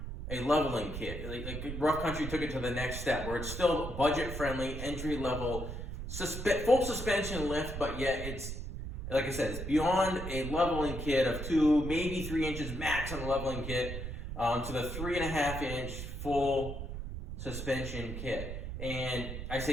a leveling kit. Like Rough Country took it to the next step where it's still budget friendly, entry level, full suspension lift, but yet it's, like I said, it's beyond a leveling kit of 2, maybe 3 inches max on the leveling kit, to the 3.5-inch full suspension kit. And I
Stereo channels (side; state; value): right; noise; rumble, 6 dB below the sound